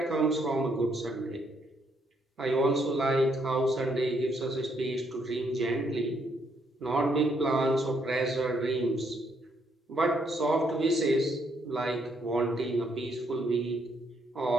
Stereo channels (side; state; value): both; normal; correlation 0.73